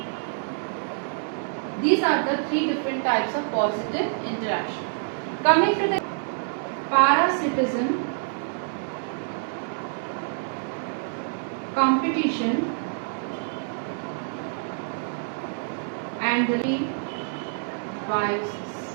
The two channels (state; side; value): silent; left; digital silence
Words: These are the three different types of positive interaction. Coming to the parasitism, competition, and the